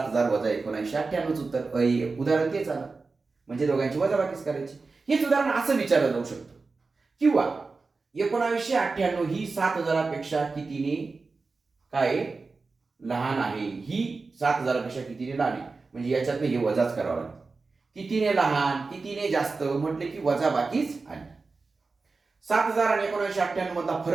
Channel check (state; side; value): quieter; left; 4.1 dB